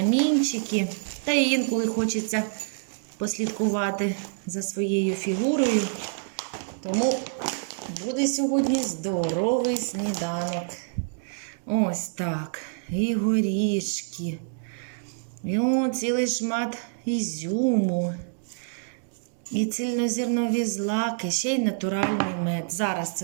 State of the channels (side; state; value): left; silent; digital silence